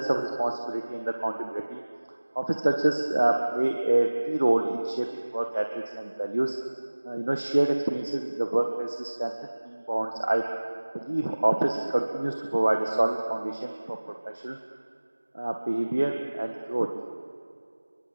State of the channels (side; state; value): both; inverted; correlation -1.00